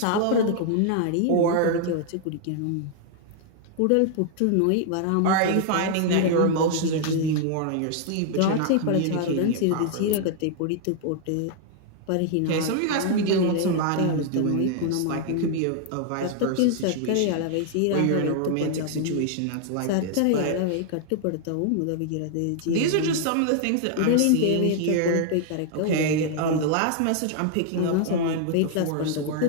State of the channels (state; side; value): different; both; correlation 0.00